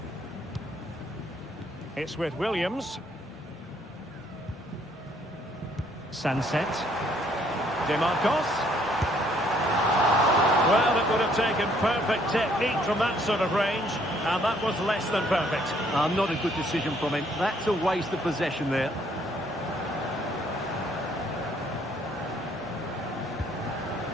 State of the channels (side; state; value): both; normal; correlation 0.65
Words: It's with Williams. Sunset. DeMarcos. Well, it would have taken perfect technique from that sort of range, and that was less than perfect. Not a good decision from him. That's a waste of possession there.